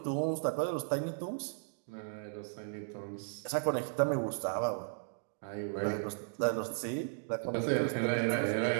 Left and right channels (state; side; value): silent; left; digital silence